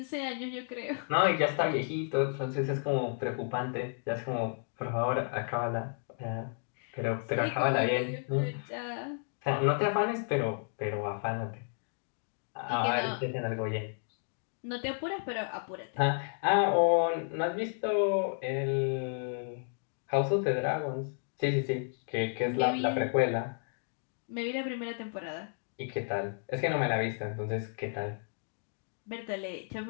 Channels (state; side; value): silent; right; 56 dB below the other